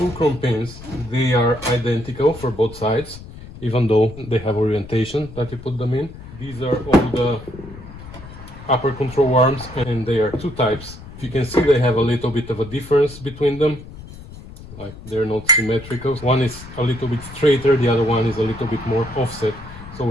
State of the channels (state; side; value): noise; left; rumble, 16 dB below the sound